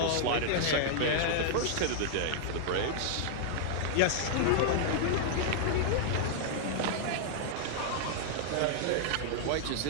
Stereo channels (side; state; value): both; different; correlation -0.01